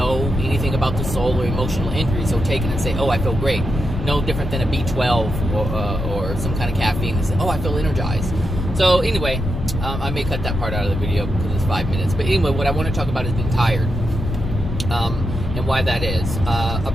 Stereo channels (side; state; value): left; noise; rumble, 4 dB below the sound